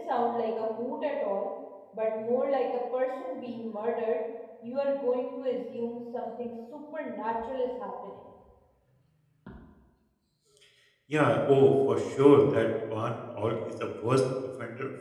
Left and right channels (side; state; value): both; identical; correlation 1.00